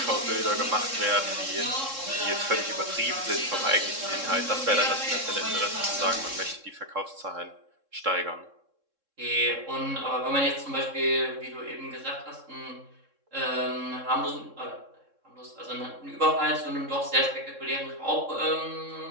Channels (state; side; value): late; left; 3.7 ms